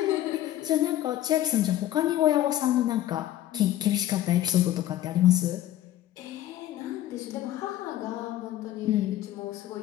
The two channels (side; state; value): right; quieter; 13.2 dB